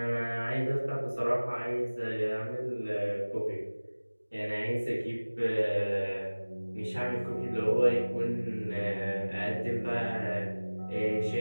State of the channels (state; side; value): inverted; both; correlation -1.00